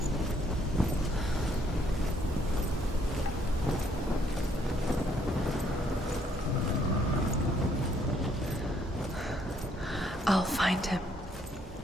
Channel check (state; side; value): normal; both; correlation 0.68